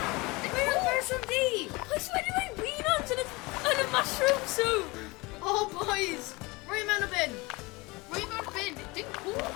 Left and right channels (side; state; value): right; quieter; 24.2 dB